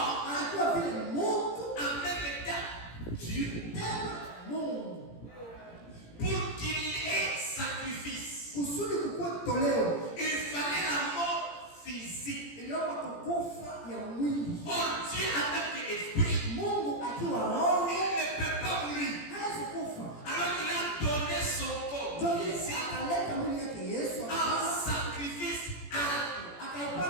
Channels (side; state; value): right; late; 17 ms